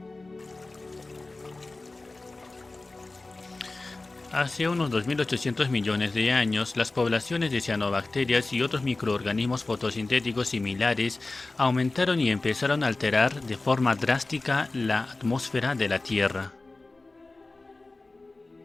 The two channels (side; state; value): right; quieter; 3.2 dB